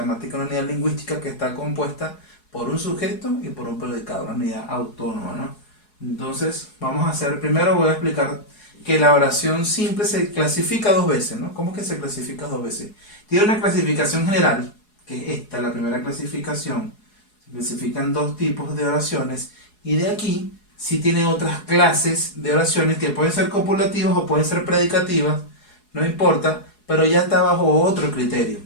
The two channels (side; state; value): right; late; 4.7 ms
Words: una unidad lingüística que está compuesta por un sujeto y por un predicado, una unidad autónoma, ¿no? Entonces, vamos a hacer, primero voy a explicar que la oración simple se clasifica dos veces, ¿no? ¿Cómo que se clasifica dos veces? Tiene una clasificación general, que es esta, la primera clasificación. Se clasifican dos tipos de oraciones y de aquí sí tiene otras clases de oraciones que pueden ser copulativas o pueden ser predicativas, no importa, pero ya está bajo otro criterio.